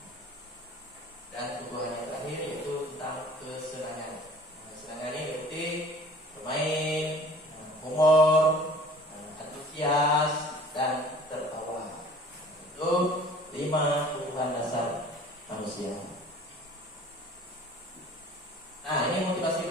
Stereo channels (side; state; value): both; normal; correlation 0.48